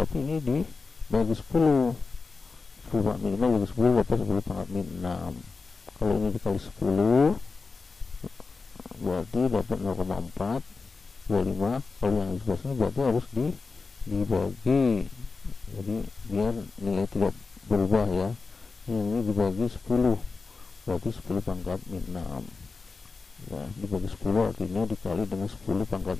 ini dibagi 10 pangkat min 5 bagi 10 dapat 10 pangkat min 6. Kalau ini dikali 10 berarti dapat 0,425. Kalau yang di sebelah sini berarti harus dibagi, jadi biar nilai tidak berubah ya. Yang ini dibagi 10 berarti 10 pangkat min 6 ya, dibagi 10 artinya dikali dengan 10 pangkat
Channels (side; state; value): right; quieter; 4.3 dB